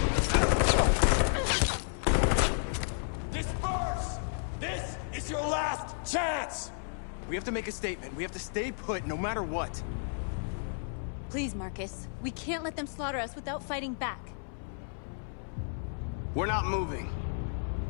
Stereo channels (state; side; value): silent; right; 56 dB below the other